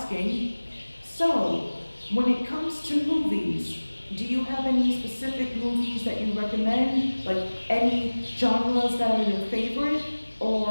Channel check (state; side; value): inverted; both; correlation -1.00